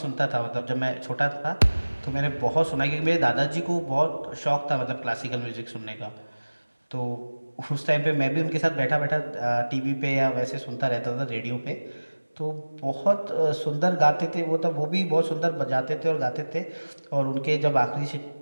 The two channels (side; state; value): both; inverted; correlation -1.00